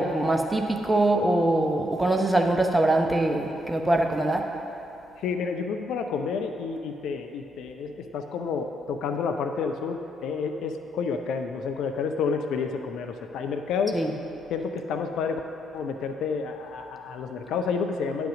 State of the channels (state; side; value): noise; right; hum, 29 dB below the sound